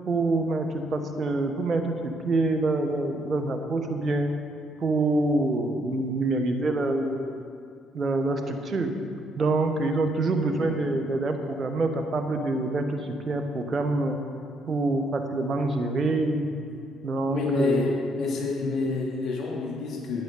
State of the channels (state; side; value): normal; both; correlation 0.72